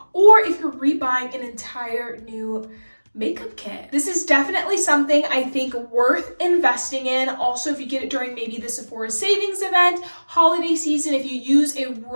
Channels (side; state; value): both; inverted; correlation -1.00